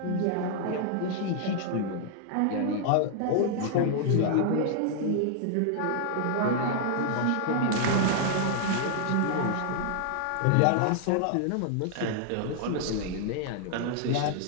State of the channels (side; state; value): both; different; correlation -0.01